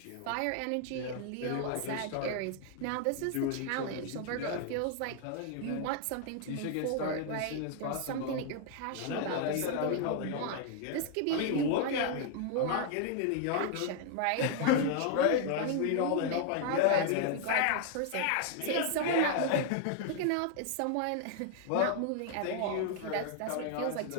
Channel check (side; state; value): both; different; correlation 0.00